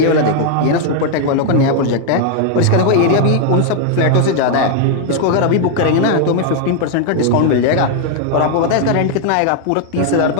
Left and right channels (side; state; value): both; different; correlation 0.00